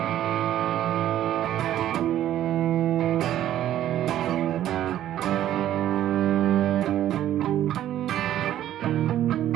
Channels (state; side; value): quieter; left; 12.2 dB